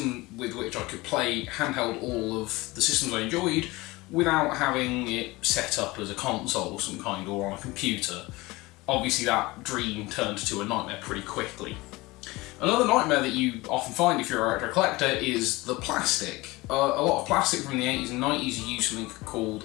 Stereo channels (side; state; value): right; quieter; 21.5 dB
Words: with which I could play handheld all of the systems I enjoyed without having it set up as a console of some kind or on a computer. Obviously that dream turned to a nightmare pretty quickly. Another nightmare that you often find if you're a retro collector is the plastic. A lot of plastic from the 80s and 90s used something